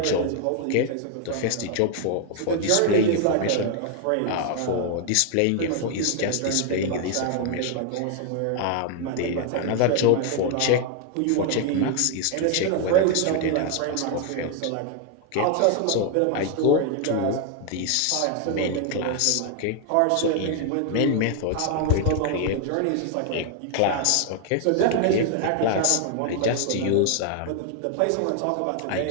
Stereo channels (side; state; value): both; different; correlation 0.00